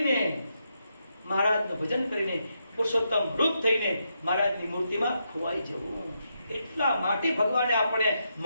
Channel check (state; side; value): inverted; both; correlation -0.82